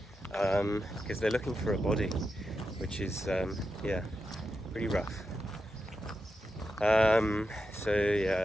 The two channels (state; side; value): normal; both; correlation 0.88